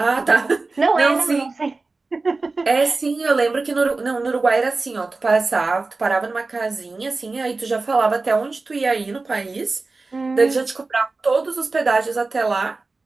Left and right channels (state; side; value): quieter; left; 3.7 dB